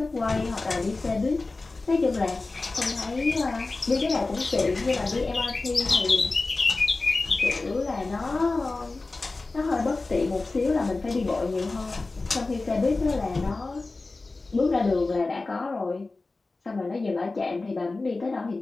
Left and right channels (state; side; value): quieter; right; 3.5 dB